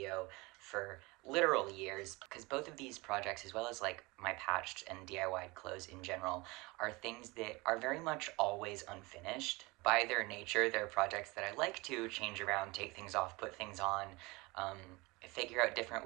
for literal years because both of these projects, as well as like my patched and DIY clothes in general, are things that are very much always unfinished. By their nature, they're projects that I like to change around, take things off, put things on, um, figure out different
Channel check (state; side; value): quieter; left; 24.0 dB